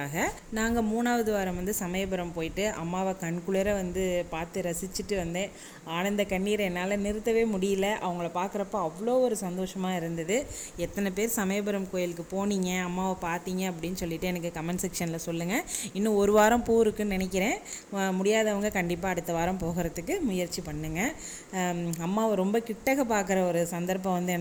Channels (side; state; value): both; identical; correlation 1.00